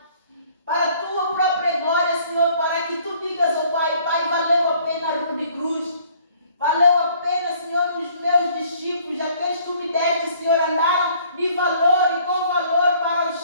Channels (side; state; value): both; inverted; correlation -0.59